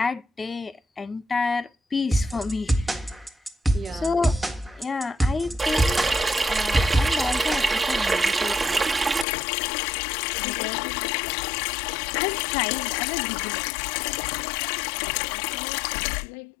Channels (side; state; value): right; drops out; at 9.2 s